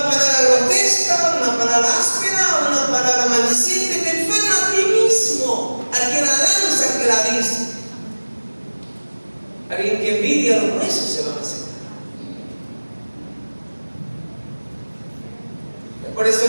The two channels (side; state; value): both; inverted; correlation -1.00